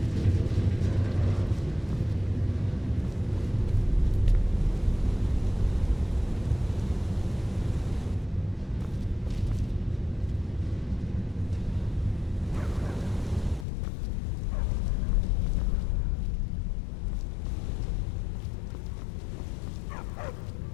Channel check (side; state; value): right; drops out; at 13.7 s